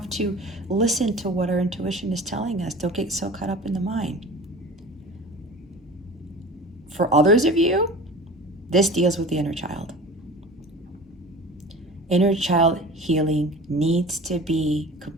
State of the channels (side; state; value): both; normal; correlation 0.37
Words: to listen to what our intuition is telling us. Don't get so caught up in the mind. For others of you, this deals with the inner child. Inner child healing needs to be